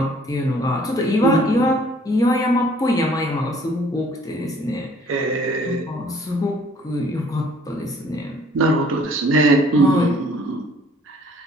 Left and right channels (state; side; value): normal; both; correlation 0.57